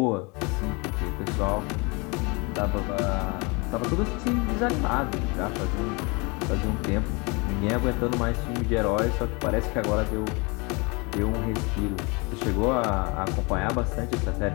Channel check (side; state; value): right; quieter; 28.7 dB